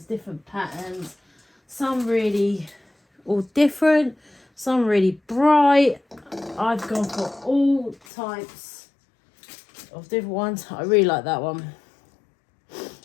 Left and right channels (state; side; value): drops out; right; at 8.0 s